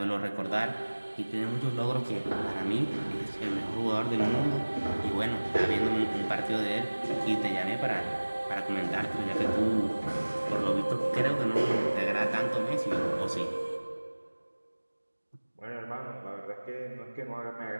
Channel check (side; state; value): both; inverted; correlation -1.00